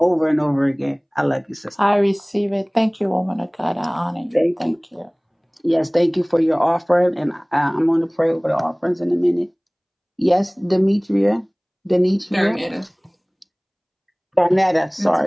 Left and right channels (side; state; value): both; identical; correlation 1.00